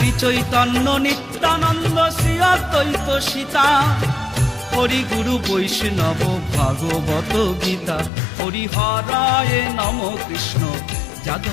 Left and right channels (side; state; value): right; drops out; at 8.1 s